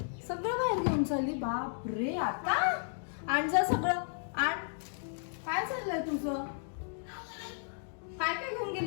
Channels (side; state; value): right; silent; digital silence